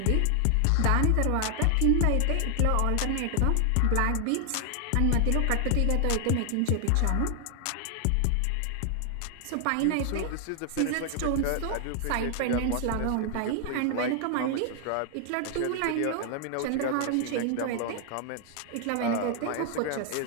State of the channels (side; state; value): both; different; correlation 0.00